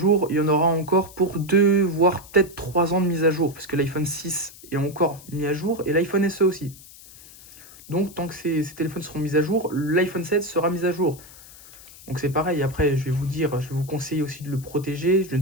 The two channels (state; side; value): noise; left; hiss, 20 dB below the sound